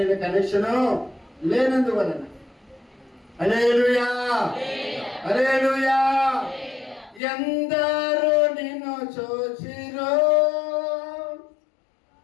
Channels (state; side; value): drops out; right; at 7.2 s